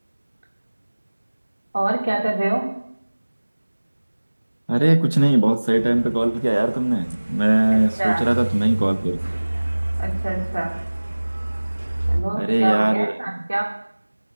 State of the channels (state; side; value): inverted; both; correlation -1.00